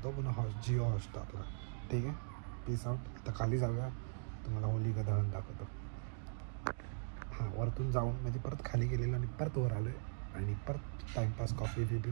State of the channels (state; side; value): silent; left; digital silence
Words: तो पुन्हा जिओ हॉटस्टारला. ठीक आहे. Peace out. आता खाली जाऊया. तुम्हाला होळी का दहन दाखवतो. हां वरतून जाऊन म्हणजे परत खाली गेलेलो आणि परत वर आलो आहे आणि परत टाईमपास कॉफी